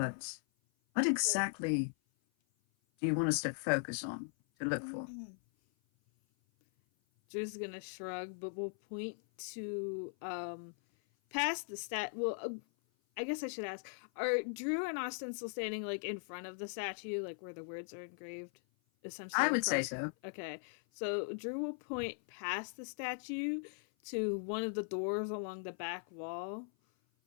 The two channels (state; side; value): silent; right; 52 dB below the other